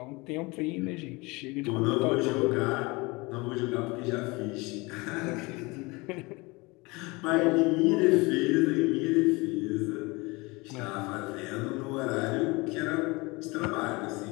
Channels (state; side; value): quieter; right; 25.0 dB